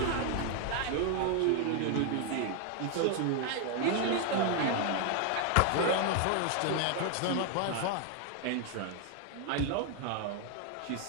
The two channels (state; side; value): different; both; correlation 0.00